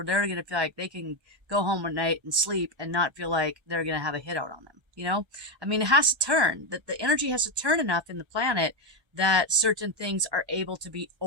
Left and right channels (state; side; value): late; left; 1.3 ms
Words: they're going to feel like they can go home at night and sleep and not feel like they're going to have a hit out on them. It has to turn, that the energy has to turn enough in the planet that certain things are able to be